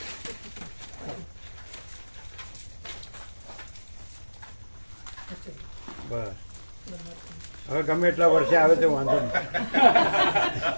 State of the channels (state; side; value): inverted; both; correlation -1.00